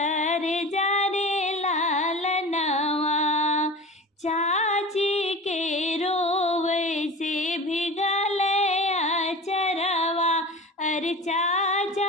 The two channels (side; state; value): both; normal; correlation 0.34